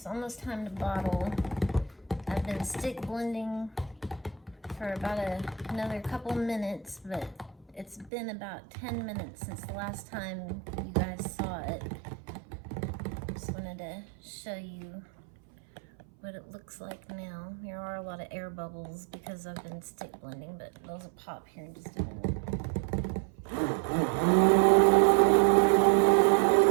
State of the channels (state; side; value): drops out; left; at 8.1 s